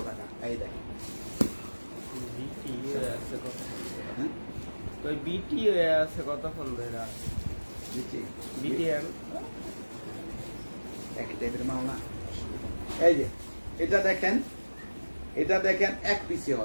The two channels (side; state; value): both; inverted; correlation -1.00